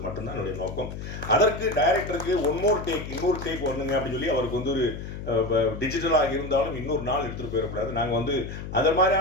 மட்டும்தான் என்னுடைய நோக்கம். அதற்கு டைரக்டருக்கு இன்னொரு டேக் ஒண்ணுங்க அப்படின்னு சொல்லி அவருக்கு வந்து ஒரு டிஜிட்டலாக இருந்தாலும் இன்னொரு நாள் எடுத்துகிட்டு போயிடக்கூடாது. நாங்கள் வந்து அது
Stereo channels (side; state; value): left; noise; hum, 8 dB below the sound